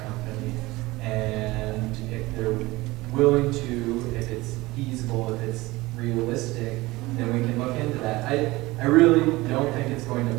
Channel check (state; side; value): quieter; left; 20.4 dB